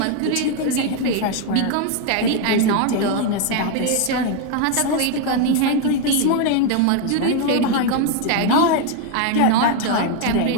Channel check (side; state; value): both; different; correlation 0.01